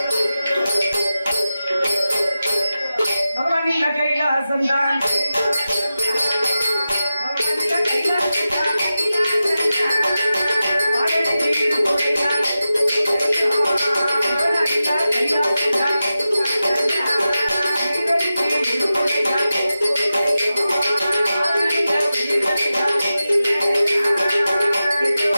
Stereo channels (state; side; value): inverted; both; correlation -0.93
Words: பகவானின் கைலாசம் தான்